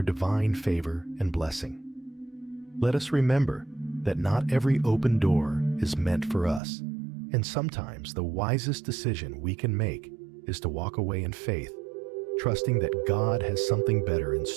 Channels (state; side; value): drops out; left; at 6.6 s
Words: divine favor and blessing. Let us remember that not every open door is meant for us, and sometimes the wisest decision we can make is to walk away in faith, trusting that God has something better in